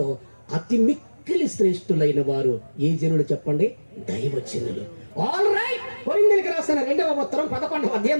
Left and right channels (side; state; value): both; inverted; correlation -1.00